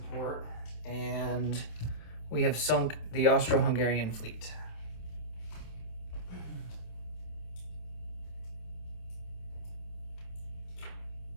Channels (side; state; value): right; late; 27 ms